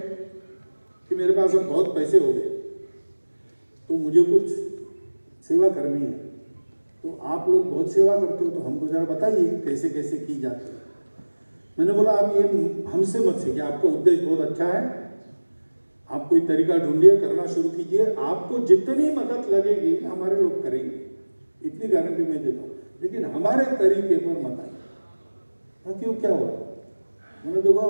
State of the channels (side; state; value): both; inverted; correlation -1.00